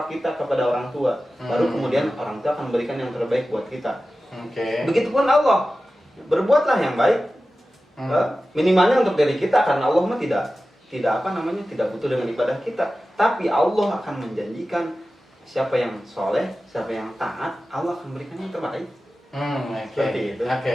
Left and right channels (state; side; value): normal; both; correlation 0.94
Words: kita kepada orang tua, baru kemudian orang tua akan memberikan yang terbaik buat kita. Begitupun Allah, berbuatlah yang baik, minimalnya untuk diri kita, karena Allah mah tidak butuh dengan ibadah kita, tapi Allah akan menjanjikan siapa yang soleh, siapa yang taat, Allah akan memberikan yang terbaik. Seperti itu.